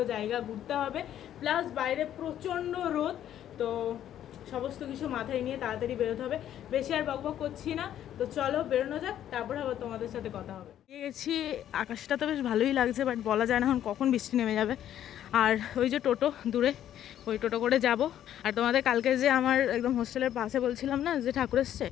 জায়গা ঘুরতে হবে, প্লাস বাইরে প্রচণ্ড রোদ। তো সমস্ত কিছু মাথায় নিয়ে তাড়াতাড়ি বেরোতে হবে। বেশি আর বকবক করছি না, তো চলো বেরোনো যাক, তারপরে আবার তোমাদের সাথে কথা হবে। গেছি, আকাশটা তো বেশ ভালোই লাগছে, বাট বলা যায় না এখন কখন বৃষ্টি নেমে যাবে। আর ওই যে টোটো দূরে, ওই টোটো করে যাব। আর তোমাদের কালকে যে আমার একদম হোস্টেলের পাশে বলছিলাম না যে ঠাকুর এসছে,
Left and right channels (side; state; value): right; quieter; 11.1 dB